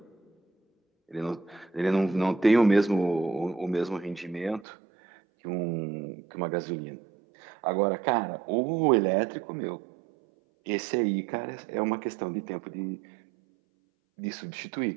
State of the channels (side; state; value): left; drops out; at 4.7 s